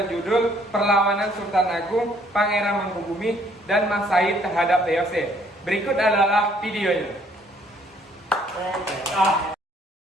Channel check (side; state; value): both; normal; correlation 0.63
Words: Perlawanan Sultan Agung, Pangeran Mangkubumi, dan Mas Said terhadap VOC. Berikut adalah videonya.